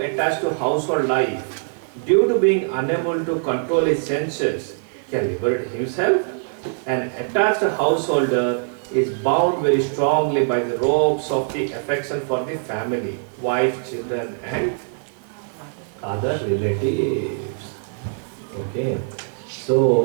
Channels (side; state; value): left; silent; digital silence